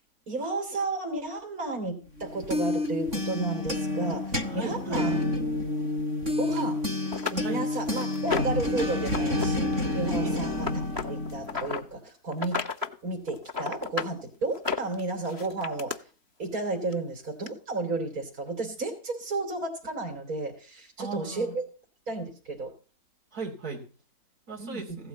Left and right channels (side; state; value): left; late; 3.6 ms